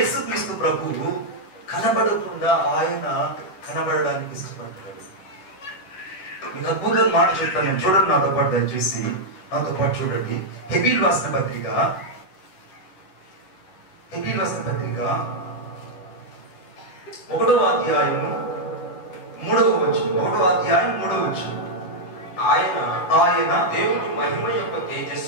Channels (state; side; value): late; right; 11 ms